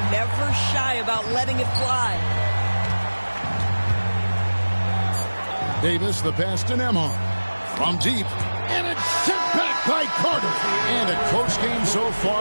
never shy about letting it fly. Davis, the pass to Nembhard. From deep. And it's sent back by Carter. And a close game so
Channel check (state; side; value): inverted; both; correlation -1.00